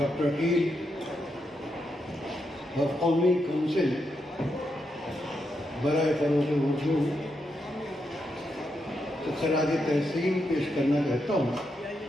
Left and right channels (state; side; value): normal; both; correlation 0.83